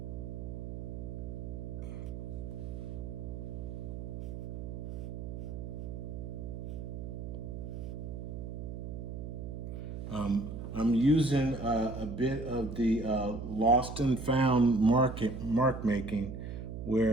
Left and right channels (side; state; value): right; noise; hum, 7 dB below the sound